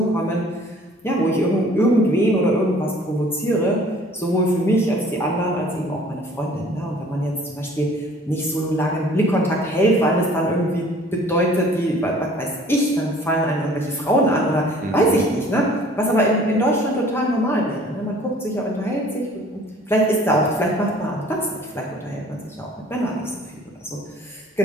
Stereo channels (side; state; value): both; normal; correlation 0.52